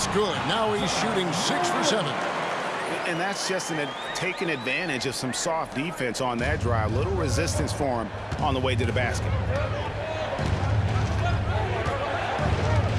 good. Now he's shooting 6 for 7. And that's just taking advantage of some soft defense on that drive. Little resistance for him on the way to the basket.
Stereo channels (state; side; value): identical; both; correlation 1.00